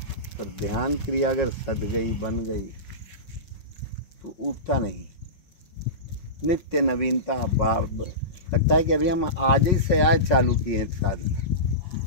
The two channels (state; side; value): late; right; 5.5 ms